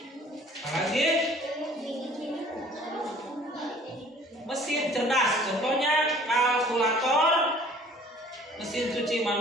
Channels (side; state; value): both; normal; correlation 0.52